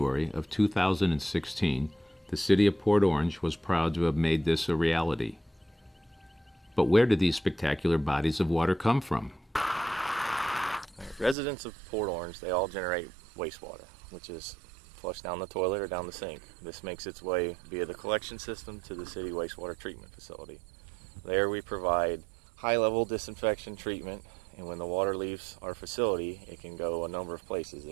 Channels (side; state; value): left; drops out; at 11.4 s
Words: of 2016, the city of Port Orange was proud to have made this a reality. But where did these spectacular bodies of water come from? Residents of Port Orange, they all generate wastewater, which is flushed down the toilet or down the sink. This makes its way via the collection system to the city wastewater treatment facility. There we provide high-level disinfection treatment, and when the water leaves our facility, it can go a number of places.